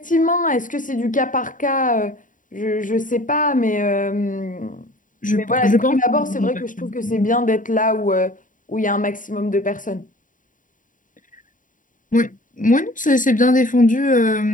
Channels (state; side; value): late; right; 0.38 ms